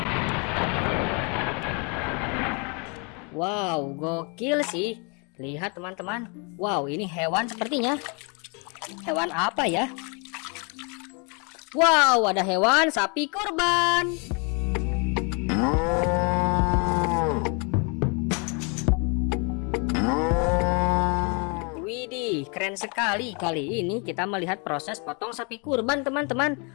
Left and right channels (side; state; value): right; quieter; 34.2 dB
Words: Wow, gokil sih. Lihat teman-teman. Wow, ini hewan sepertinya. Hewan apa ya? Wow, ada hewan sapi kurban. Widih, keren sekali. Kali ini kita melihat proses potong sapi kurban